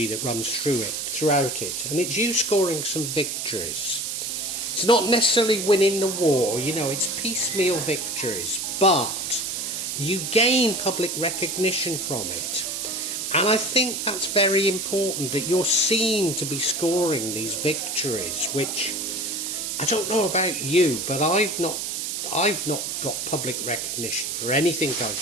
that runs throughout it, and it's you scoring some victories. It's not necessarily winning the war, it's piecemeal victories, but you gain public recognition from it. And I think that's very important, that you're seen to be scoring these victories, which I don't know about you, but I've not got public recognition for anything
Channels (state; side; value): noise; right; hiss, 3 dB below the sound